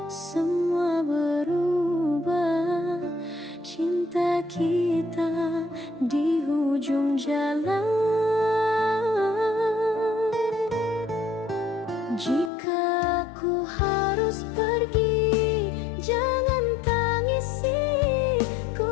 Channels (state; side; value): drops out; right; at 12.5 s